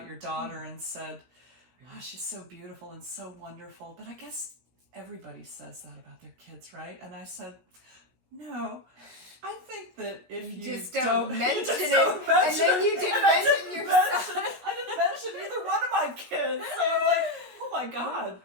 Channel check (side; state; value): left; late; 16 ms